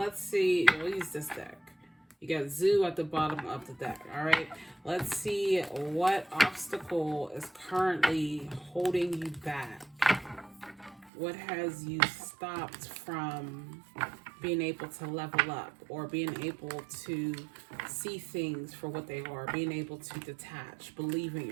use this deck. You got Zoo at the bottom of the deck. All right. Let's see what obstacle is currently holding you back. What has you stopped from being able to level up, or being able to see things for what they are, being able to detach, believe in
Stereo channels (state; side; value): drops out; left; at 11.1 s